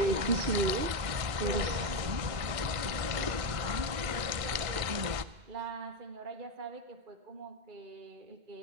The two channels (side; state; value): left; late; 1.6 ms